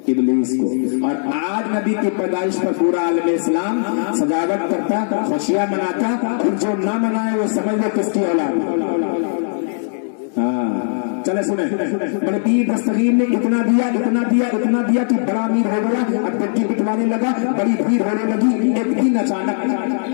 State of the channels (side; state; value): right; silent; digital silence